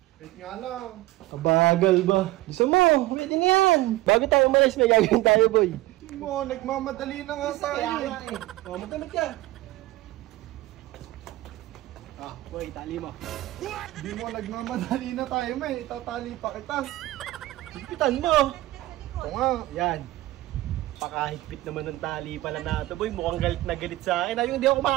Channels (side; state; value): left; quieter; 17.7 dB